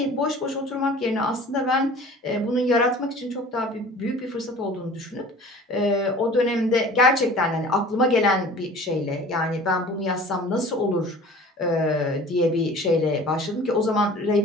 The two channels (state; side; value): normal; both; correlation 0.44